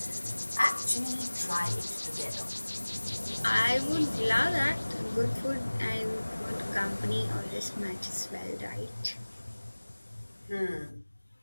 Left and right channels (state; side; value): inverted; both; correlation -1.00